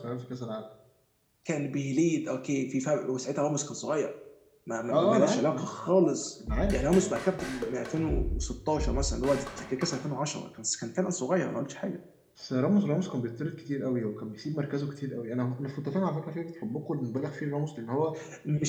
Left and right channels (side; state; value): both; identical; correlation 1.00